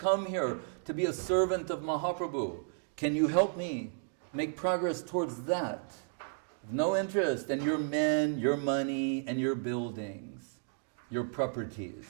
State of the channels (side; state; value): left; silent; digital silence